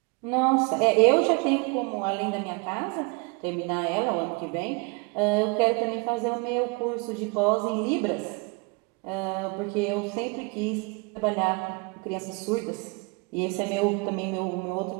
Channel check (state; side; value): quieter; left; 30.2 dB